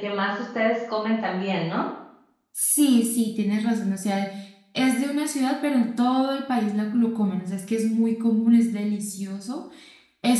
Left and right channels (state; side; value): identical; both; correlation 1.00